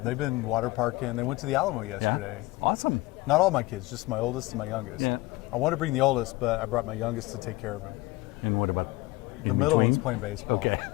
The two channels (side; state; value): right; quieter; 20.8 dB